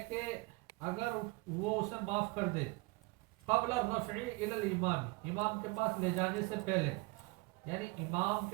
کہ اگر وہ اسے معاف کر دے، قبل الرفع الی الامام، امام کے پاس لے جانے سے پہلے، یعنی امام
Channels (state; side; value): quieter; left; 25.7 dB